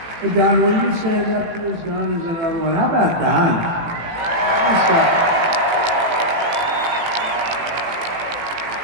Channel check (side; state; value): left; late; 18 ms